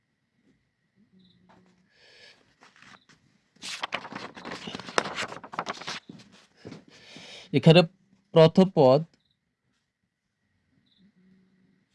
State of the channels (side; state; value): both; identical; correlation 1.00